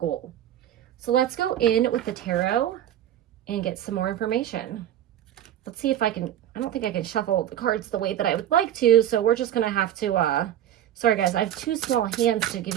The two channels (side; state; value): left; quieter; 11.3 dB